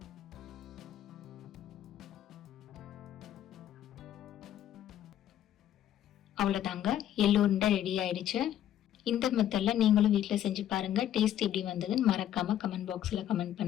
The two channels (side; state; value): right; quieter; 11.4 dB